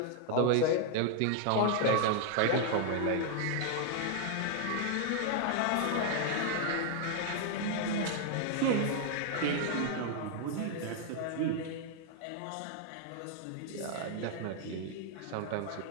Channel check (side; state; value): both; different; correlation 0.00